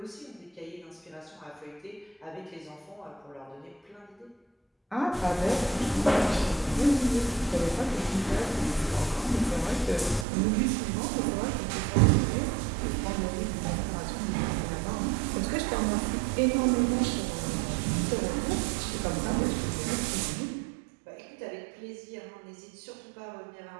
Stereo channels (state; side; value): drops out; left; at 10.2 s